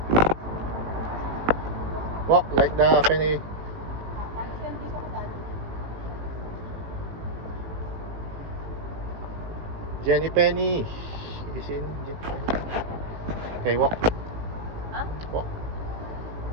Walk like the penny. Jenny Penny. Have you seen Jenny Penny? Okay, walk. Walk.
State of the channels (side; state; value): left; late; 18 ms